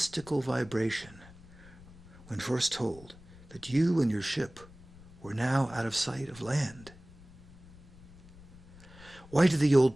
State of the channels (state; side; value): noise; left; rumble, 21 dB below the sound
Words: vibration when first told that you and your ship were now out of sight of land? Why did the